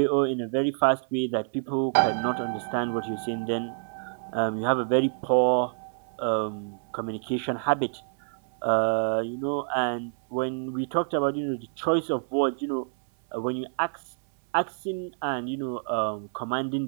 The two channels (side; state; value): left; silent; 60 dB below the other